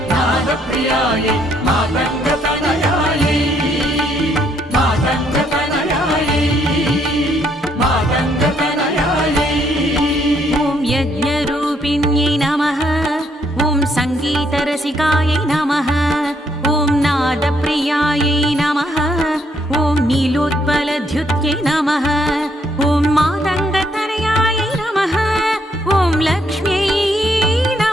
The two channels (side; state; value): both; normal; correlation 0.71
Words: नादप्रियायै मातङ्गतनयायै मातङ्गतनयायै मातङ्गतनयायै ॐ यज्ञरूपिण्यै नमः ॐ सङ्गीतरसिकायै नमः ॐ नादप्रियायै नमः ॐ नीलोत्पलद्युत्यै नमः ॐ मातङ्गतनयायै नमः ॐ लक्ष्म्यै